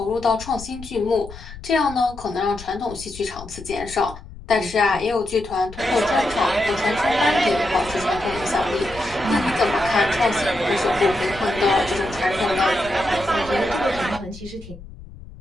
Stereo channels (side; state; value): left; noise; rumble, 16 dB below the sound